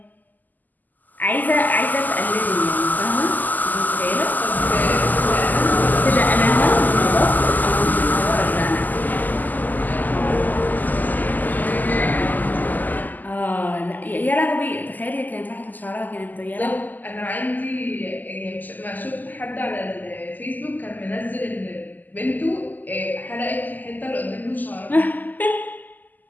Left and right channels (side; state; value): right; late; 0.084 ms